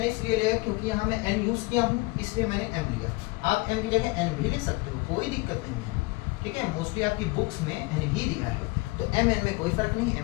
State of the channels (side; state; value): right; quieter; 24.8 dB